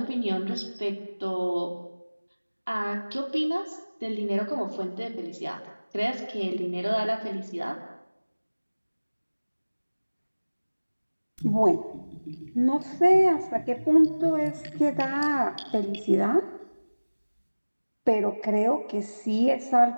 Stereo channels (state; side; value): inverted; both; correlation -1.00